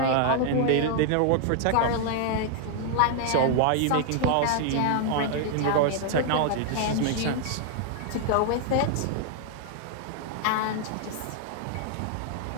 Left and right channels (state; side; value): different; both; correlation 0.00